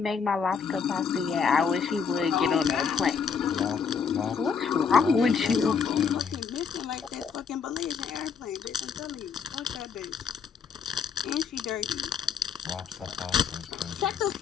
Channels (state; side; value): quieter; right; 6.3 dB